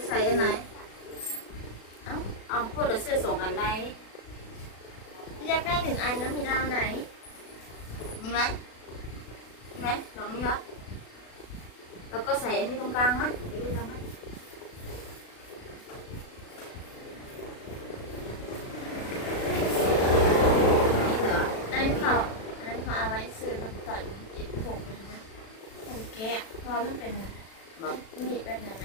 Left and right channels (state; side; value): late; right; 36 ms